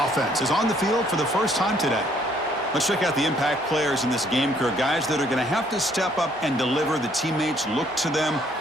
is on the field for the first time today. Let's check out the impact players in this game, Kirk. Guys that are going to have to step up and deliver. The teammates look to them.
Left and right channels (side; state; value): both; normal; correlation 0.65